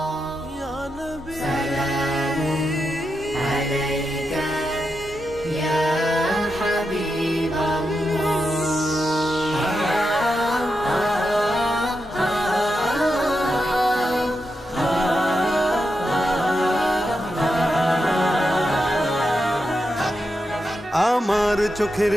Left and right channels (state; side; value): normal; both; correlation 0.87